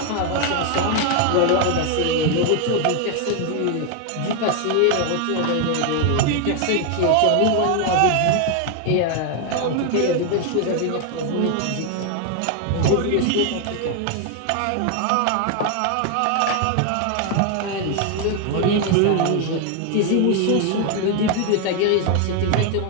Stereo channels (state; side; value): different; both; correlation 0.01